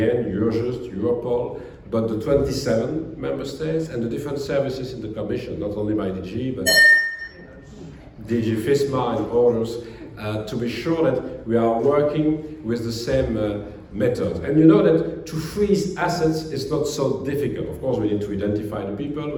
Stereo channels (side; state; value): both; identical; correlation 1.00